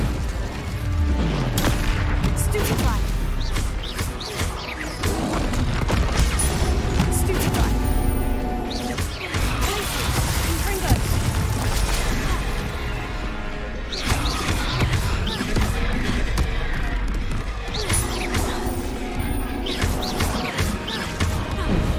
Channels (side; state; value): both; identical; correlation 1.00